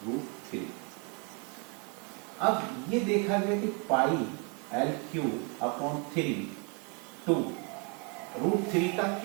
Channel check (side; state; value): left; quieter; 34.7 dB